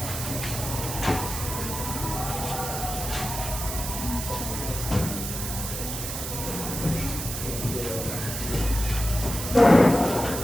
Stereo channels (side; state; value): right; noise; hiss, 5 dB below the sound